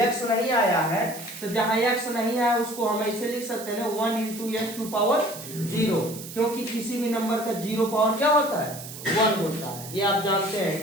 x नहीं आया है तो जहां x नहीं आया उसको हम ऐसे लिख सकते हैं 1 into x टू पावर 0, क्योंकि किसी भी नंबर का 0 पावर क्या होता है 1 होता है। ये आप जानते हैं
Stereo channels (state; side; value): noise; right; hiss, 12 dB below the sound